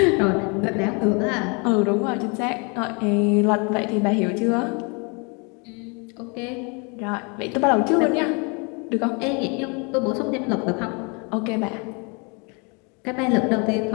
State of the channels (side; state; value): right; quieter; 32.4 dB